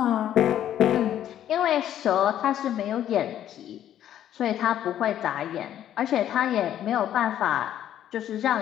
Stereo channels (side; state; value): right; quieter; 11.1 dB